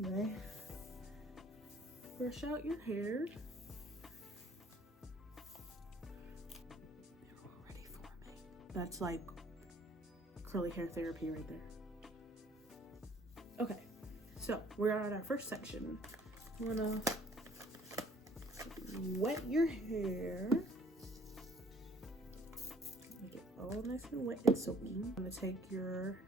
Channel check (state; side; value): normal; both; correlation 0.56